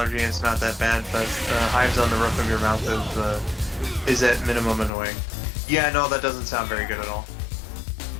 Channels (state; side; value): drops out; right; at 4.9 s